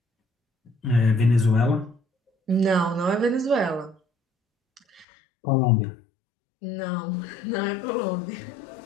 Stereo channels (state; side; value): drops out; right; at 5.1 s